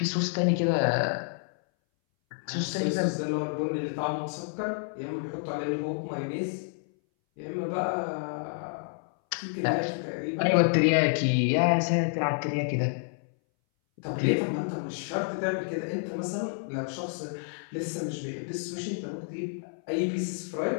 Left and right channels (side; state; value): right; silent; 58 dB below the other